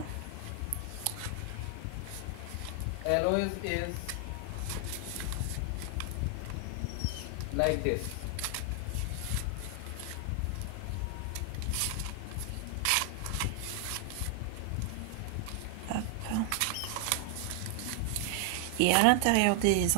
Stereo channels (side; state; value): both; different; correlation 0.00